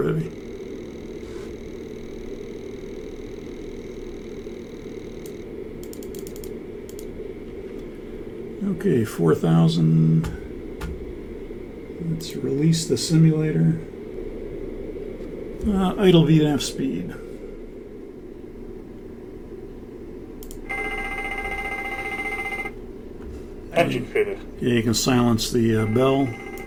Heavy. Okay, 4,000. Let's release the simulator. Idle VNAV speed. Engine failure. Yeah, you can silence the bell.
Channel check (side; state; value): both; identical; correlation 1.00